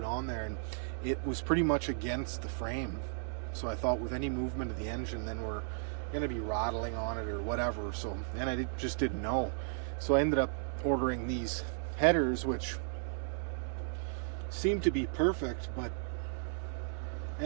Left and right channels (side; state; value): left; silent; 54 dB below the other